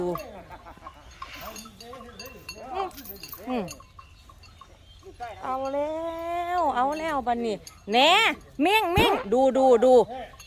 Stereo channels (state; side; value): identical; both; correlation 1.00